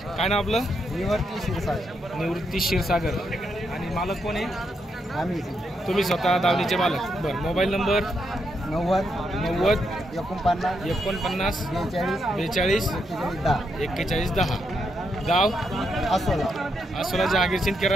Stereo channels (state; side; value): normal; both; correlation 0.80